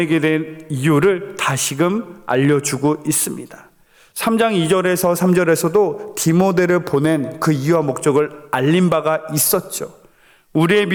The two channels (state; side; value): identical; both; correlation 1.00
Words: 된 이유를 다시금 알려주고 있습니다. 3장 2절에서 3절에서도 디모데를 보낸 그 이유와 목적을 알린 바가 있었죠. 우리의